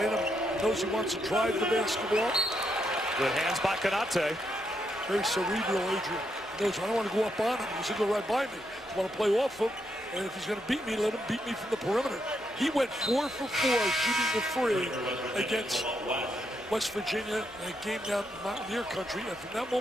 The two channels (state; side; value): normal; both; correlation 0.79